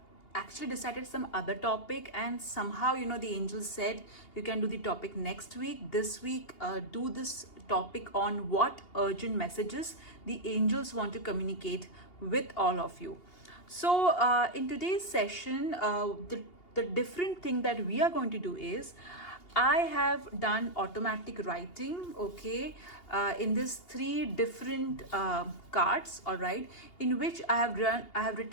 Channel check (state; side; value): late; right; 2.8 ms